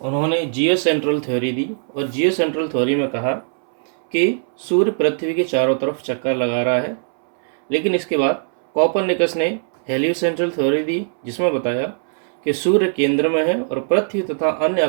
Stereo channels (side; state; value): left; silent; 66 dB below the other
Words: उन्होंने जियो सेंट्रल थ्योरी दी और जियो सेंट्रल थ्योरी में कहा कि सूर्य पृथ्वी के चारों तरफ चक्कर लगा रहा है। लेकिन इसके बाद कोपरनिकस ने हेलियोसेंट्रल थ्योरी दी, जिसमें बताया कि सूर्य केंद्र में है और पृथ्वी तथा अन्य